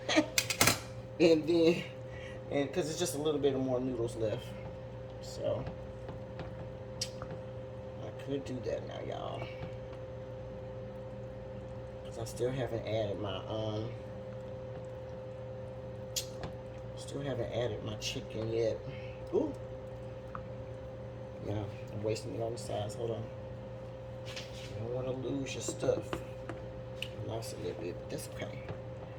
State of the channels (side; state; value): both; identical; correlation 1.00